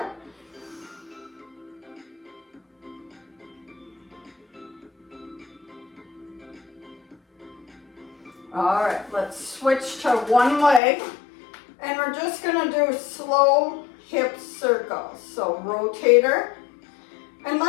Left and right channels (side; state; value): right; drops out; at 10.8 s